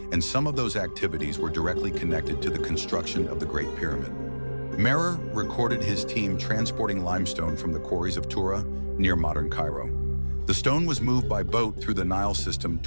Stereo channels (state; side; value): inverted; both; correlation -1.00